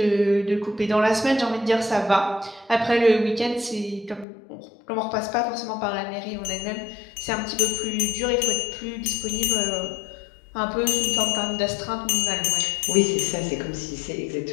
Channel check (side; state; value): right; drops out; at 4.2 s